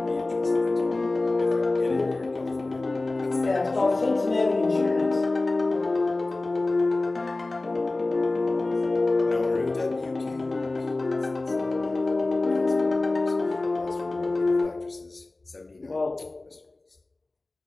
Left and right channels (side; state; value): right; quieter; 3.1 dB